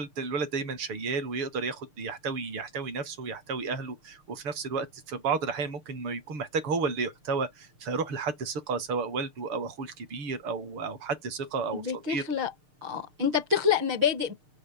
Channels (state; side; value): late; left; 6.6 ms